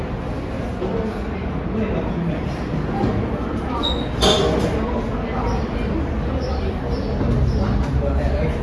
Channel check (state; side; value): identical; both; correlation 1.00